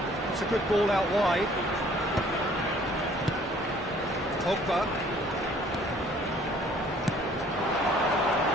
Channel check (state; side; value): normal; both; correlation 0.57